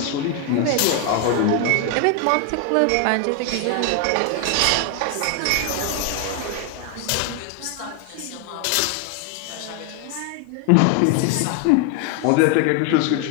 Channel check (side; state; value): both; different; correlation 0.01